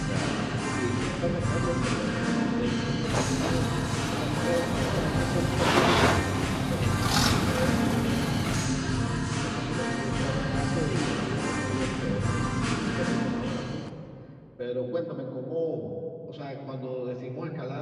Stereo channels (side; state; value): both; identical; correlation 1.00